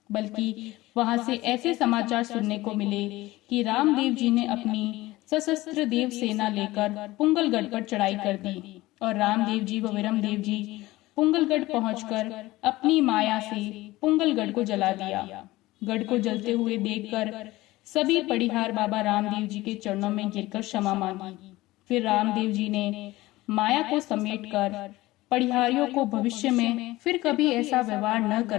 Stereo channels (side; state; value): right; quieter; 18.5 dB